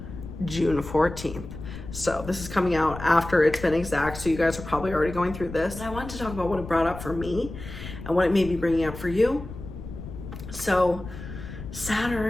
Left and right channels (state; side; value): noise; left; rumble, 11 dB below the sound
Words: June 14th. So this is coming out after it's been exact, so you guys are probably already going through this. And I wanted to talk about what it brought up for me and what it may be bringing up for you. So